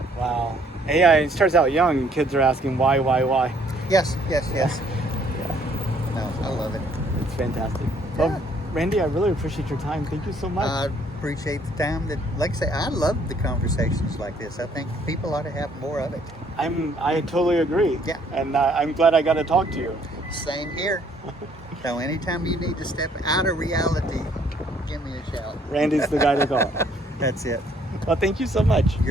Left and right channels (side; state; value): both; normal; correlation 0.64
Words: Wow. AI, it starts out young, and kids are asking why. Yes. Yes. Yes. Yeah, No, I love it. it's fantastic. Yeah. Well, Randy, I really appreciate your time. Thank you so much. I appreciate the time that, like I say, I love the conversations like this. I think people ought to have more of it. I totally agree. Yeah. And I'm glad I got to talk to you. Same here. So anytime you need to step out of reality, give me a shout. Randy's the guy to call. That's it. Well, thank you so much.